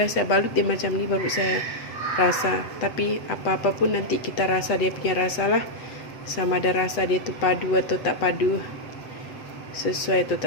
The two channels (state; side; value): late; right; 7.7 ms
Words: saya balut dia macam ni baru saya rasa. Tapi apa-apa pun nanti kita rasa dia punya rasa lah. Sama ada rasa dia tu padu atau tak padu, sesuai atau